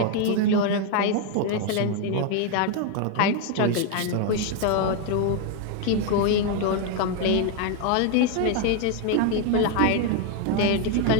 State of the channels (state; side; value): different; both; correlation 0.01